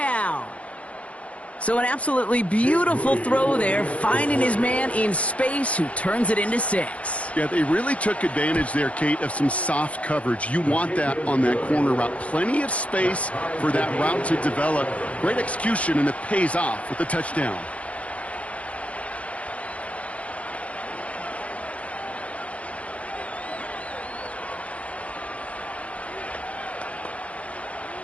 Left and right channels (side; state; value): right; late; 0.065 ms